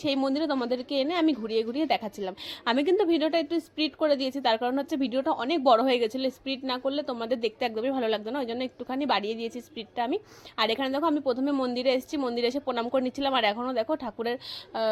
সেই মন্দিরে তোমাদেরকে এনে আমি ঘুরিয়ে ঘুরিয়ে দেখাচ্ছিলাম। আমি কিন্তু ভিডিওটা একটু স্প্লিট করে দিয়েছি, তার কারণ হচ্ছে ভিডিওটা অনেক বড় হয়ে গেছিলো। স্প্লিট না করলে তোমাদের দেখতে একদমই ভালো লাগতো না, ওই জন্য একটুখানি বাড়িয়ে দিয়েছি স্প্লিটটা আমি। আর এখানে দেখো, আমি প্রথমে মন্দিরে এসেছি, মন্দিরে এসে প্রণাম করে নিচ্ছিলাম। আর এখনও দেখো ঠাকুরের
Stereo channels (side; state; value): both; identical; correlation 1.00